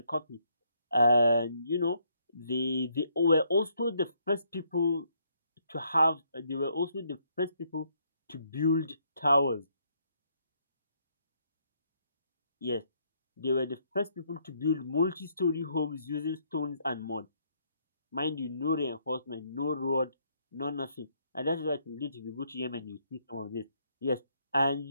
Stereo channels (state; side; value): inverted; both; correlation -0.72